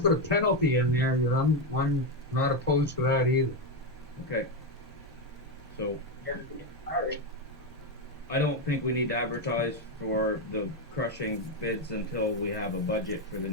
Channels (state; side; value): normal; both; correlation 0.07